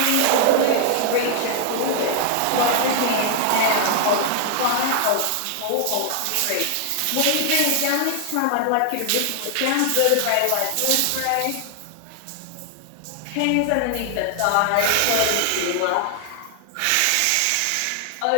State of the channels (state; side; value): different; both; correlation 0.00